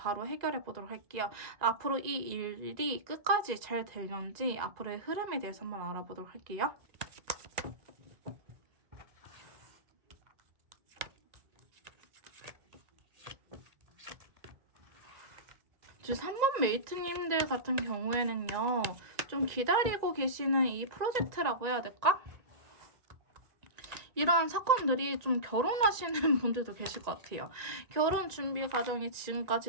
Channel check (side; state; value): left; late; 1.9 ms